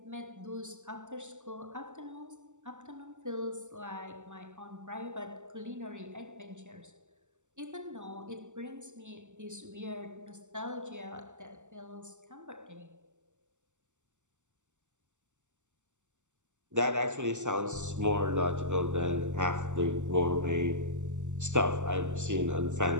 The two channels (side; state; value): left; late; 0.85 ms